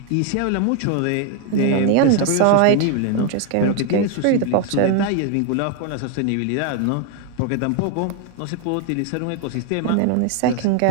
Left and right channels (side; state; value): both; different; correlation 0.01